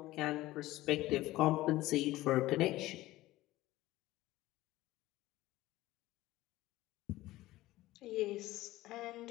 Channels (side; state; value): right; quieter; 17.2 dB